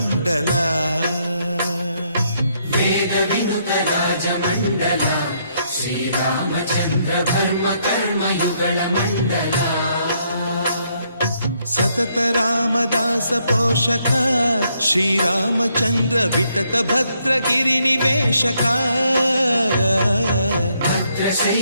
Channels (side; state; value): both; inverted; correlation -0.73